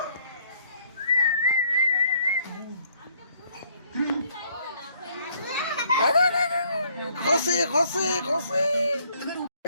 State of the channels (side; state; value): both; inverted; correlation -0.65